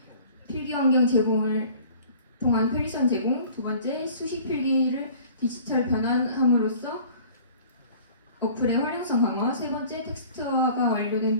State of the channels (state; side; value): inverted; both; correlation -0.48